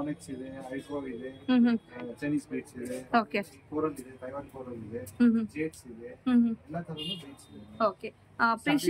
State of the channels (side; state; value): both; identical; correlation 1.00